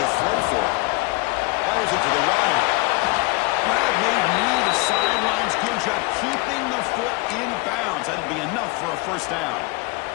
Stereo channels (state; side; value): quieter; right; 24.2 dB